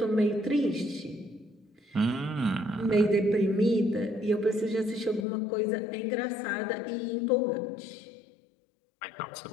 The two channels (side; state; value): right; drops out; at 5.2 s